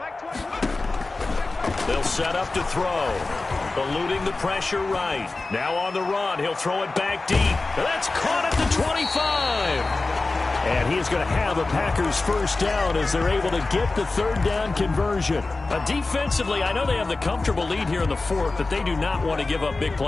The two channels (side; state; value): right; quieter; 3.4 dB